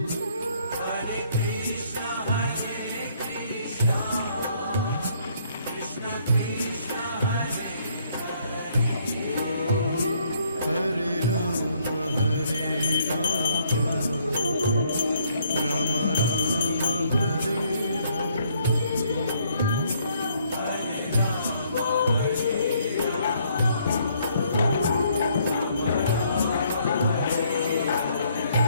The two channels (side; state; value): both; inverted; correlation -0.67